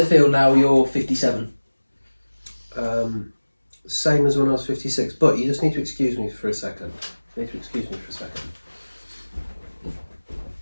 feel now you're 57? Same as when I was 56, but you just need to excuse me for a second.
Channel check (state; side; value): inverted; both; correlation -1.00